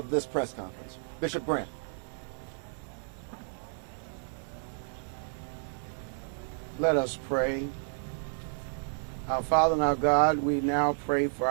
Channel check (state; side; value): silent; left; digital silence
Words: this press conference. Bishop Grant. Let us pray. Our Father and our God, we now pray for